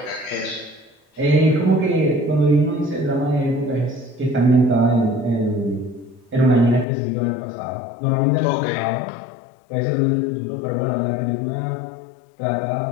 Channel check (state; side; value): drops out; right; at 6.9 s